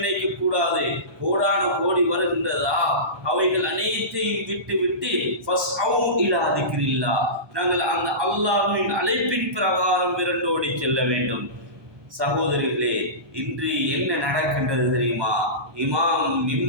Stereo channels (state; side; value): late; left; 1.2 ms